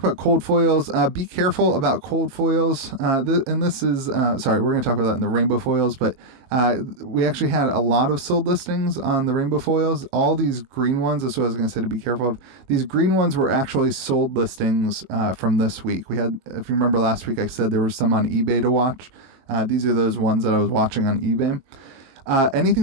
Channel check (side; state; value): left; late; 22 ms